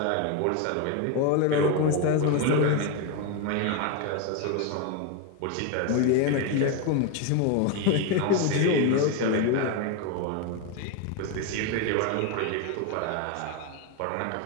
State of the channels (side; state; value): both; different; correlation 0.02